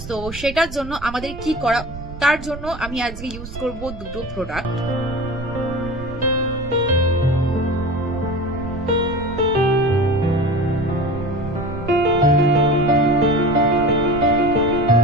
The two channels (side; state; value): right; noise; rumble, 12 dB below the sound